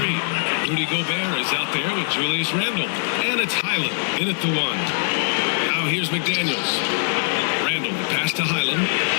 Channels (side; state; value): right; silent; digital silence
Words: Rudy Gobert is out there with Julius Randle. And it's Highland in at the 1. Now here's McDaniels. Randle, the pass to Highland.